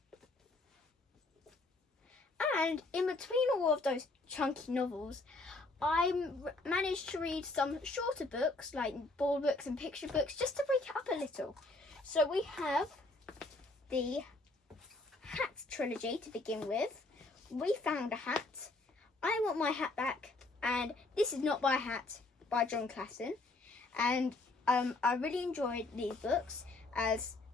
And in between all of those chunky novels, I managed to read some shorter books, like ball books and picture books, just to break it up a little. So we have the Hat trilogy to begin with. We Found a Hat, I Want My Hat Back, and This Is Not My Hat by Jon Klassen. And I really enjoyed these books, as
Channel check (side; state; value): right; quieter; 3.1 dB